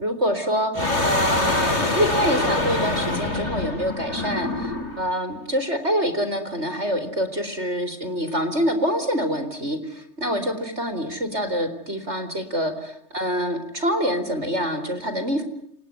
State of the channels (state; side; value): late; left; 3.3 ms